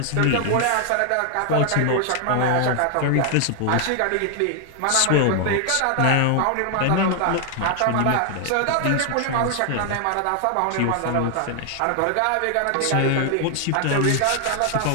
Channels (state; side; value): different; both; correlation 0.00